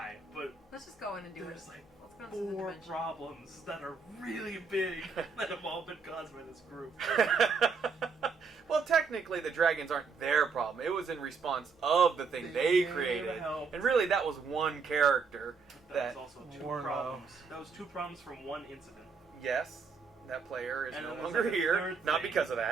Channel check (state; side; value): quieter; left; 5.2 dB